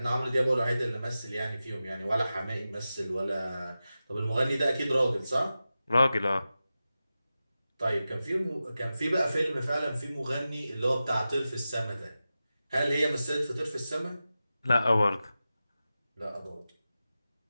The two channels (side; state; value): both; inverted; correlation -0.94